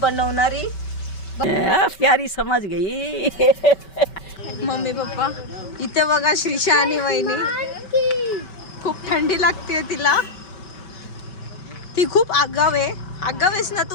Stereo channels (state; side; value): late; right; 5.2 ms